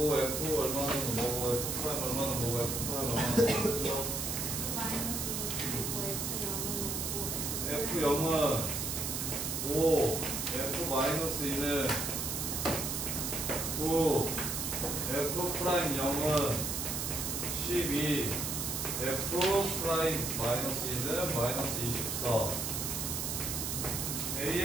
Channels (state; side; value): noise; right; hiss, 2 dB below the sound